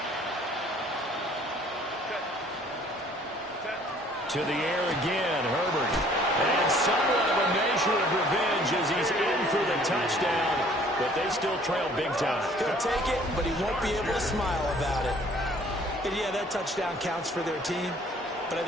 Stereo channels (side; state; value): both; normal; correlation 0.56